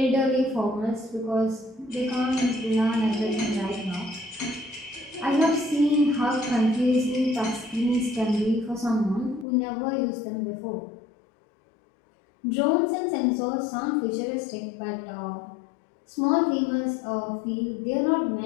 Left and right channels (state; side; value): drops out; right; at 9.5 s